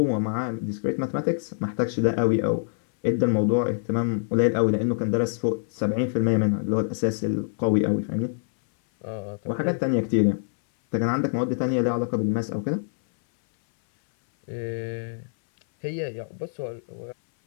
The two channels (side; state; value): right; silent; 60 dB below the other